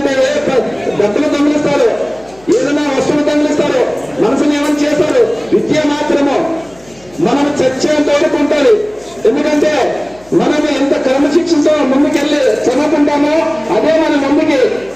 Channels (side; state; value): left; noise; hum, 27 dB below the sound